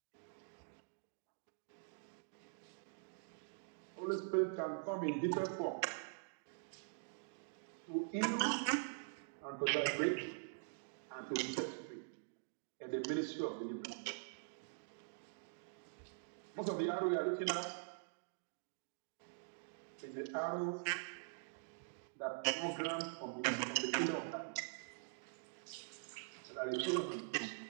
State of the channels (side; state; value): left; silent; digital silence